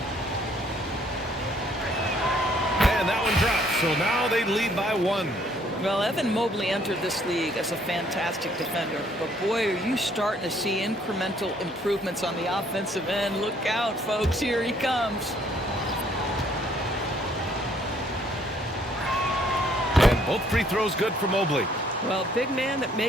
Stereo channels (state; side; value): normal; both; correlation 0.64